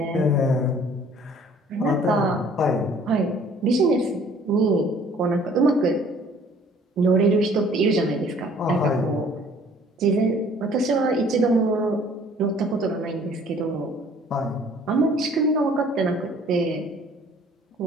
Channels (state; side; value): normal; both; correlation 0.55